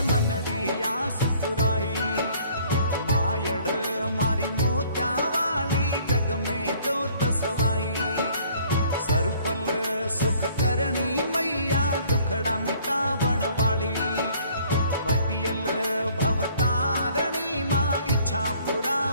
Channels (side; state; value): both; inverted; correlation -0.57